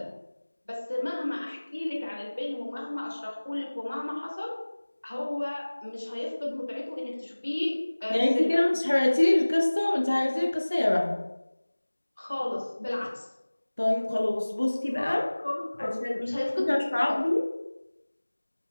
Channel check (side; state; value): both; inverted; correlation -1.00